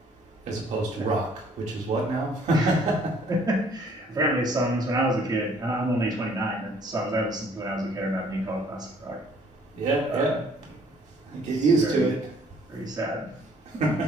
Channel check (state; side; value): normal; both; correlation 0.60